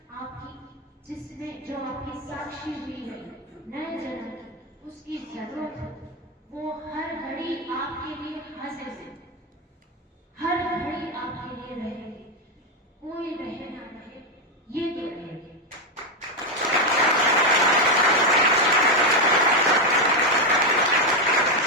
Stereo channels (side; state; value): both; normal; correlation 0.06